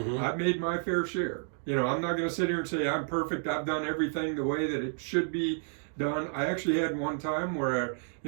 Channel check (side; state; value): left; silent; digital silence